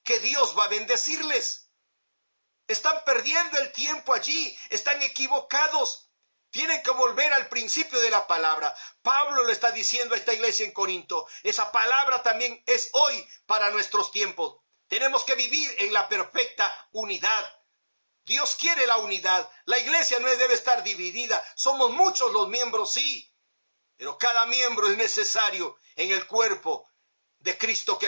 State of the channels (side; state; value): both; inverted; correlation -1.00